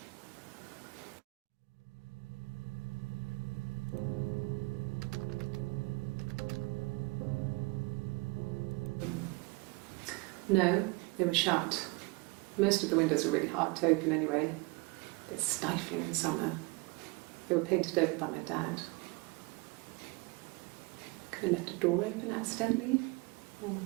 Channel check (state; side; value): quieter; left; 26.5 dB